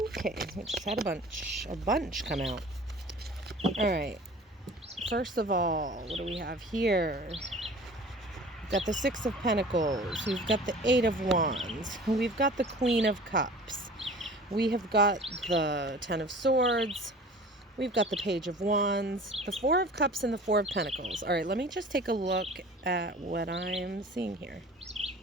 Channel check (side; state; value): both; normal; correlation 0.43